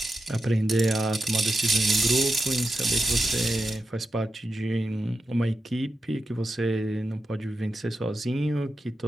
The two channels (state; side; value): normal; both; correlation 0.89